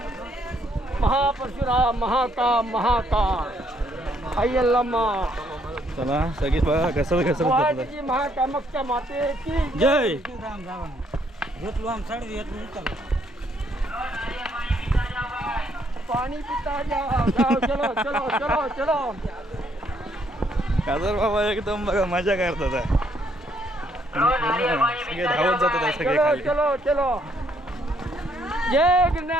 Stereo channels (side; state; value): both; normal; correlation 0.70